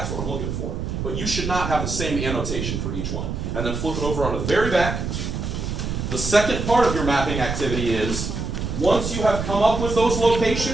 what I'm looking for. But you should not have the same annotation for each one. And then flip it over on the very back. The second part of your mapping activity is, once you have come up with those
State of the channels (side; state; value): right; noise; rumble, 3 dB below the sound